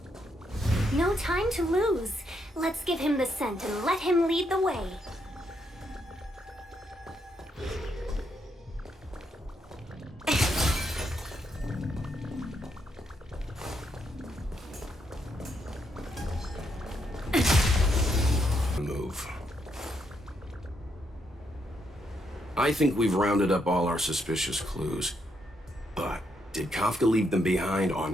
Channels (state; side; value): normal; both; correlation 0.77